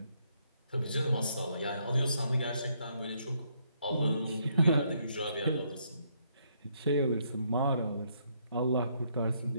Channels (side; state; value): both; inverted; correlation -0.73